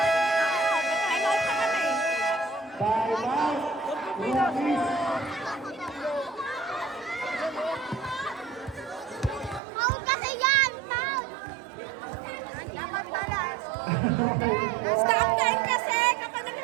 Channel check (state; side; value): drops out; left; at 9.6 s